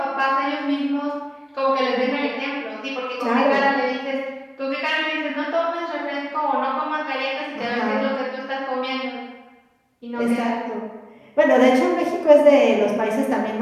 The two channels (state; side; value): identical; both; correlation 1.00